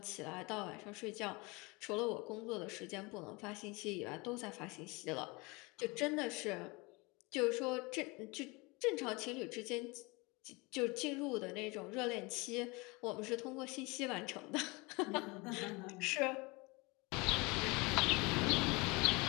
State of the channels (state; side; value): quieter; right; 26.0 dB